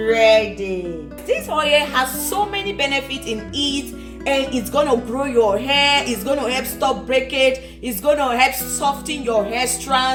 This oil has so many benefits in it, and it's gonna grow your hair, it's gonna help stop breakage, it's gonna help soften your hair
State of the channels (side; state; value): both; identical; correlation 1.00